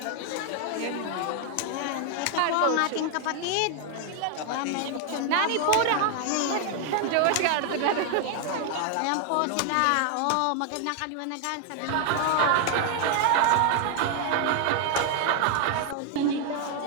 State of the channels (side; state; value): both; different; correlation 0.00